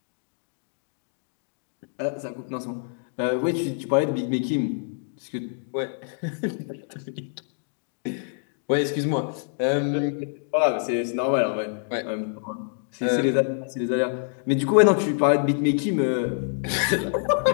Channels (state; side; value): silent; right; digital silence